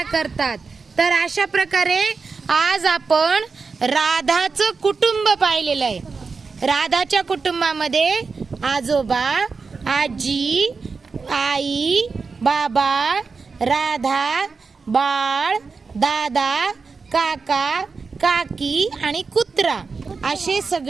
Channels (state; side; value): quieter; left; 4.7 dB